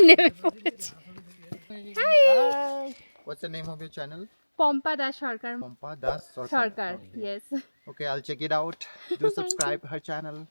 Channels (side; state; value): both; inverted; correlation -1.00